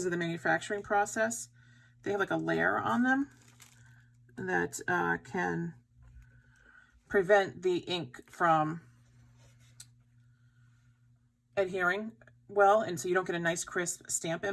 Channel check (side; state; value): both; identical; correlation 1.00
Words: of the manufacturing process, they have like a layer on them that can prevent the ink from adhering well, and so you don't get a nice crisp stamp